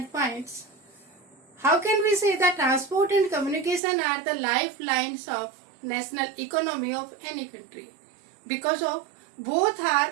points. How can we say that transport and communication are the lifelines of national economy of any country? Because of both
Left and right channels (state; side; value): drops out; left; at 3.8 s